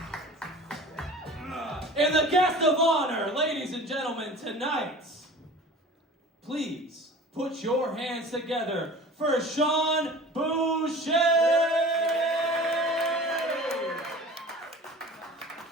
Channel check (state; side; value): normal; both; correlation 0.41